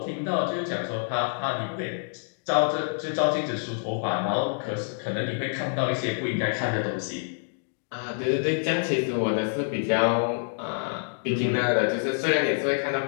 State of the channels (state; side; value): silent; right; digital silence